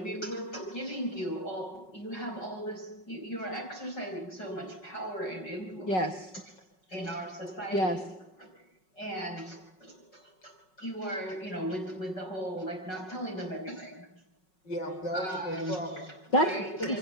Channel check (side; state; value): right; late; 5.4 ms